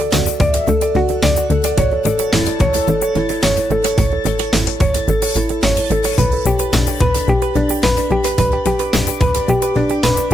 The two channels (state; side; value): normal; both; correlation 0.83